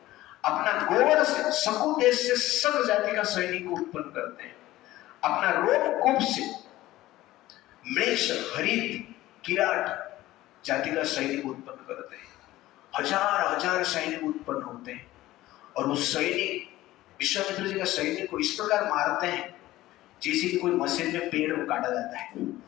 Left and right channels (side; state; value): right; quieter; 16.3 dB